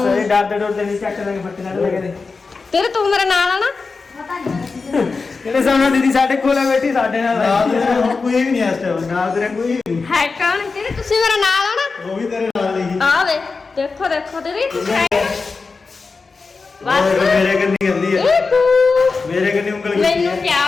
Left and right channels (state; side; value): quieter; right; 4.4 dB